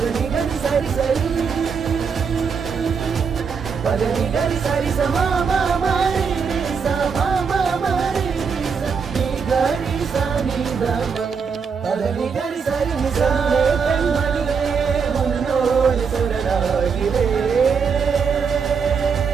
கரி சரி சரி மதனி கரி சரி சமா மரி சமா மரி நீ கரி சனி தமா மதனி கரி சரி நிசா கண்மணியே உன்னோடு சுடராகிறே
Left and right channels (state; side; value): quieter; left; 5.9 dB